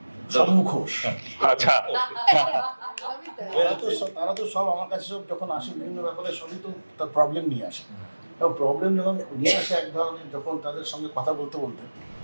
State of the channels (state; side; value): inverted; both; correlation -1.00